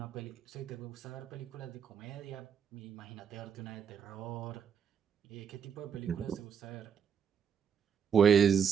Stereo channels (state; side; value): quieter; left; 7.5 dB